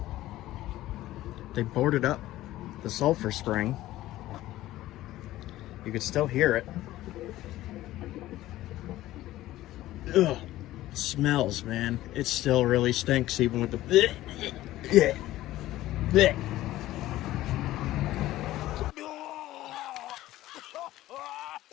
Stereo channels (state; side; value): quieter; right; 15.5 dB